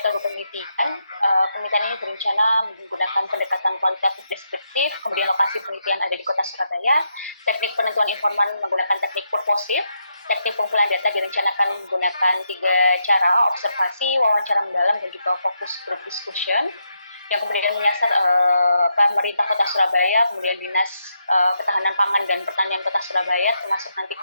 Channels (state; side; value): inverted; both; correlation -0.81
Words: penelitian, penelitian ini berencana menggunakan pendekatan kualitatif deskriptif, kemudian lokasi penelitian ada di Kota Surabaya, teknik penentuan informan menggunakan teknik purposif, teknik pengumpulan data direncanakan menggunakan 3 cara, observasi, wawancara mendalam, dan juga fokus group discussion, yang kemudian menyasar pemerintah Kota Surabaya, kemudian Dinas Ketahanan Pangan dan Pertanian Kota Surabaya, termasuk nanti